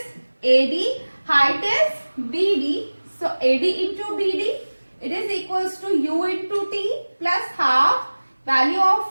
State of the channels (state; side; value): inverted; both; correlation -1.00